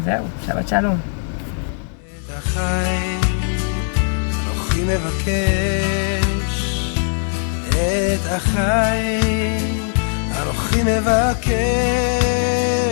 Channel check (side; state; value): right; silent; digital silence